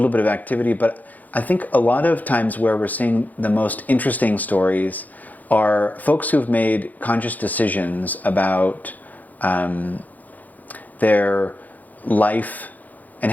bit of activity, but I think a lot of times where we're seeing the most interesting stories are folks who've made conscious decisions about their life and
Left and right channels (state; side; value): late; right; 0.081 ms